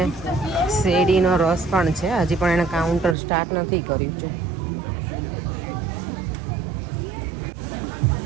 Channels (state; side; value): drops out; left; at 3.2 s